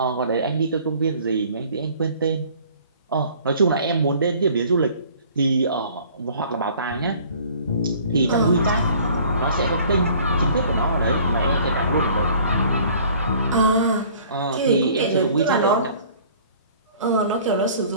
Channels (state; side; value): inverted; both; correlation -0.52